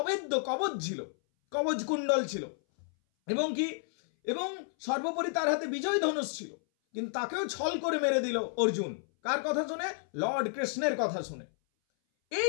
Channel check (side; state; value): right; silent; 57 dB below the other